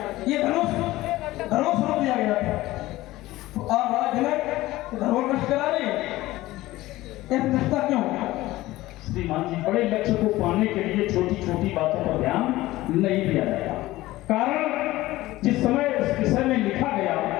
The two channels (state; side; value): quieter; right; 17.5 dB